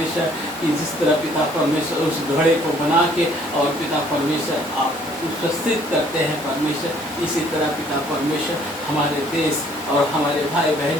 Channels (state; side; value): normal; both; correlation 0.60